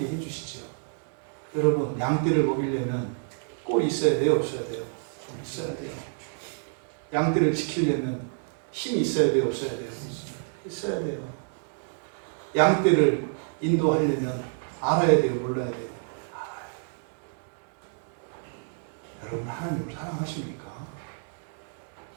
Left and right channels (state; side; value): silent; left; 59 dB below the other